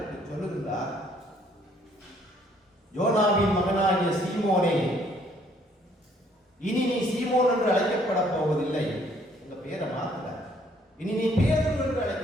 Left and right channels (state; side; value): normal; both; correlation 0.64